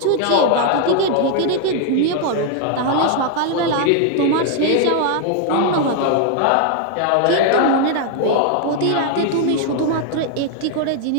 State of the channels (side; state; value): both; different; correlation 0.00